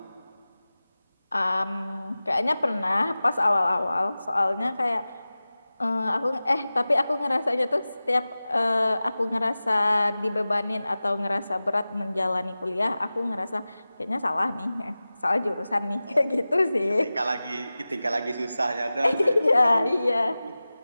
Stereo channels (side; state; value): both; inverted; correlation -0.97